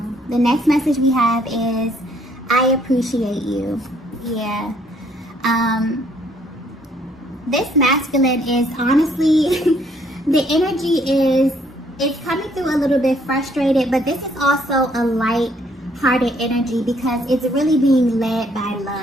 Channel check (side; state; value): both; normal; correlation 0.66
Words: The next message we have is, I appreciate you. Yeah. This masculine is honestly, the energy is, it's coming through a little bit frustrated, but this is also a light-hearted energy because it's really being led by